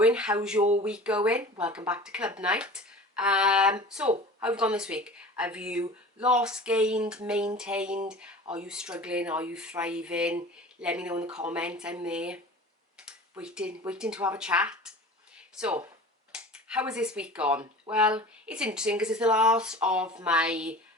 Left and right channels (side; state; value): both; normal; correlation 0.39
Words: How's your week going? Welcome back to club night. So, how have you gone this week? Have you lost, gained, maintained? Are you struggling? Are you thriving? Let me know in the comments. I'm there, waiting to have a chat. So, how has this week gone? Well, it's interesting because it's the last of my